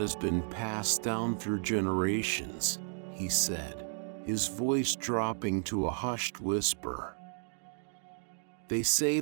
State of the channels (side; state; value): left; silent; digital silence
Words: been passed down through generations," he said, his voice dropping to a hushed whisper. "They say